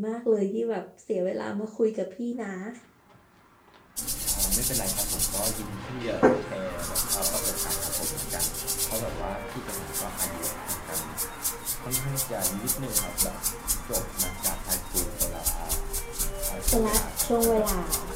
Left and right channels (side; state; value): both; identical; correlation 1.00